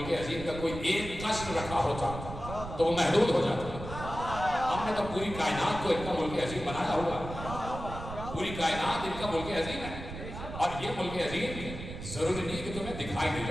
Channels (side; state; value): right; noise; rumble, 9 dB below the sound